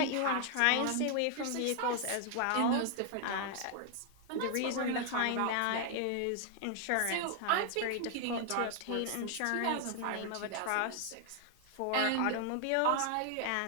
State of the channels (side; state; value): both; different; correlation 0.00